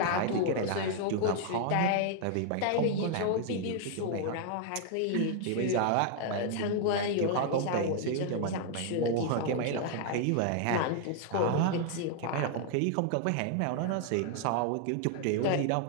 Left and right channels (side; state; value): both; different; correlation 0.00